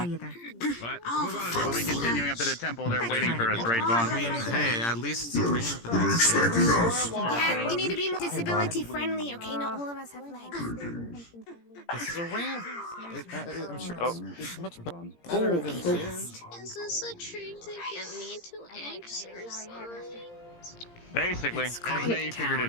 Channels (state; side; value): late; right; 17 ms